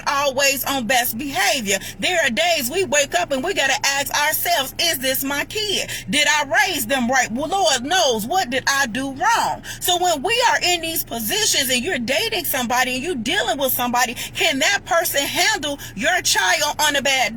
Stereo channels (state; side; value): identical; both; correlation 1.00